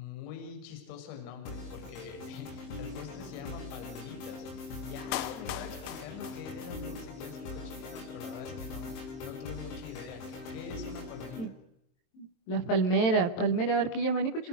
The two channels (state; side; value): late; right; 23 ms